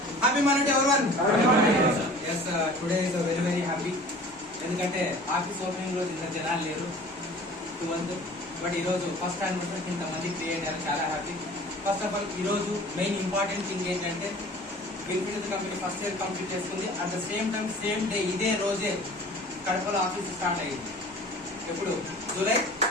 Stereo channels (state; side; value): normal; both; correlation 0.45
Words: Monday to everyone. Yes, today is a very happy. ఎందుకంటే office opening రోజు ఇంత జనాలు లేరు 12 బట్ ఈరోజు ఫస్ట్ యానివర్సరీ ఇంతమంది క్రియేట్ అయ్యారు, చాలా హ్యాపీ. ఫస్ట్ ఆఫ్ ఆల్ ఈరోజు మెయిన్ ఇంపార్టెంట్ థింగ్ ఏంటంటే విన్ఫినిటీ కంపెనీ ఫస్ట్ ఇయర్ కంప్లీట్ చేసుకుంది. At the same time same day ఇదే రోజే కడపలో ఆఫీస్ స్టార్ట్ అయ్యింది. ఎప్పుడు జూలై